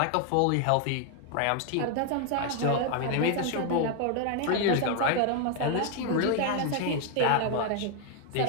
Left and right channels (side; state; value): both; different; correlation 0.00